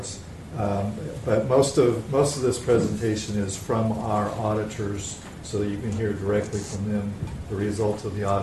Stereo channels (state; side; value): identical; both; correlation 1.00